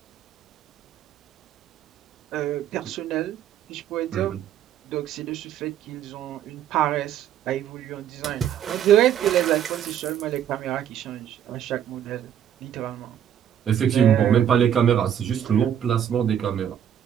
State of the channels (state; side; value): quieter; left; 9.7 dB